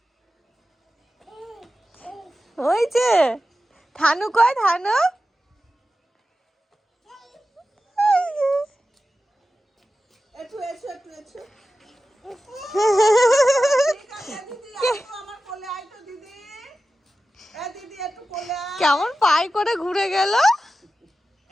ওই যে থানু কই, থানু একটু এসো কেমন পাই করে ঘুরে গেল।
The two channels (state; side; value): normal; both; correlation 0.93